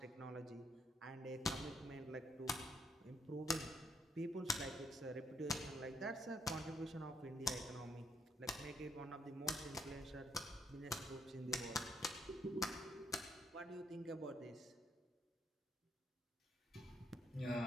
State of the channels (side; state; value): both; normal; correlation 0.73